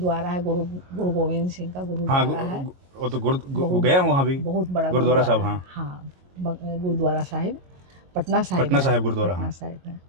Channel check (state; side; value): late; left; 22 ms